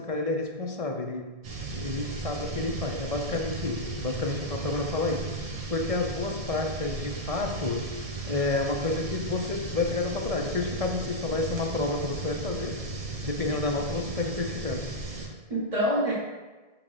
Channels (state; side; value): late; left; 1.7 ms